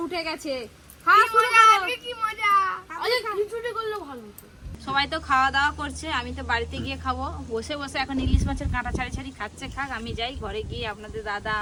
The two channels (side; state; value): both; identical; correlation 1.00